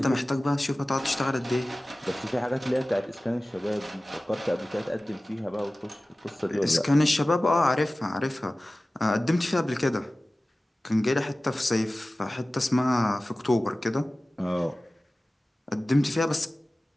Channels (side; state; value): both; normal; correlation 0.97